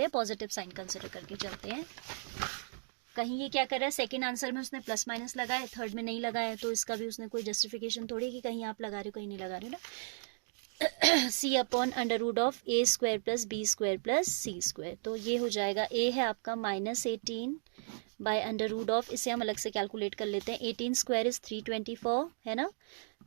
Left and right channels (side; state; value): left; silent; digital silence